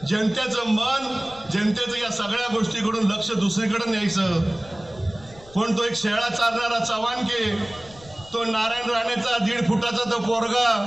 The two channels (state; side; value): noise; left; rumble, 22 dB below the sound